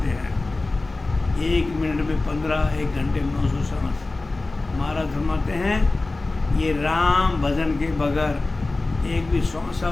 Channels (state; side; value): quieter; right; 3.2 dB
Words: हैं, 1 मिनट में 15, 1 घंटे में 900 सांस। महाराज फरमाते हैं ये राम भजन के बगैर एक भी